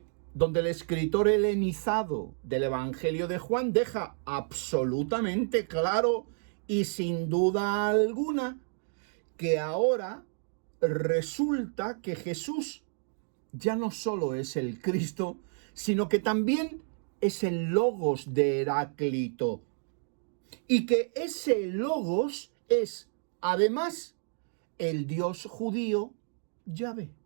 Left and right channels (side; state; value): left; silent; digital silence